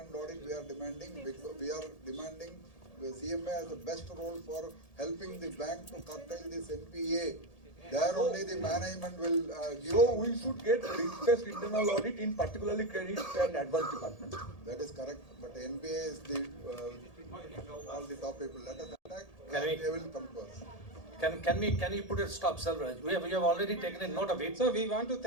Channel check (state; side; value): late; right; 1.8 ms